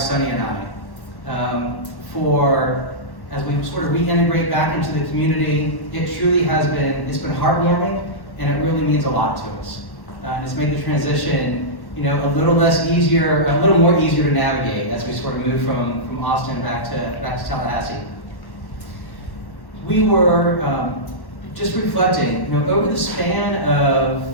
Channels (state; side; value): late; right; 1.1 ms